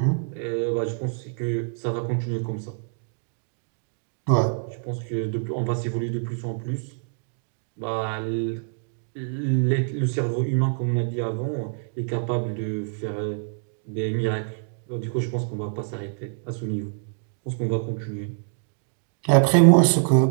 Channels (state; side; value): silent; left; digital silence